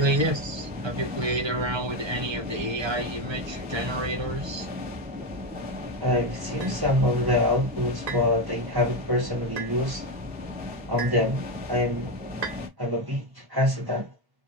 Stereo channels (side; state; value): left; late; 1.3 ms